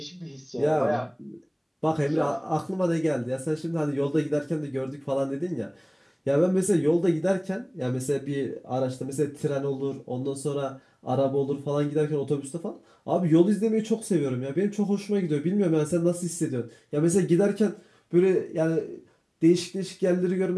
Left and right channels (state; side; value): identical; both; correlation 1.00